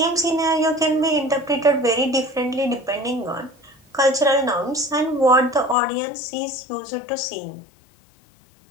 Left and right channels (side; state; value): right; drops out; at 5.8 s